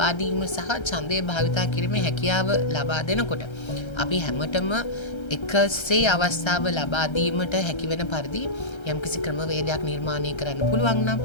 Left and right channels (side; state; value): right; late; 1.3 ms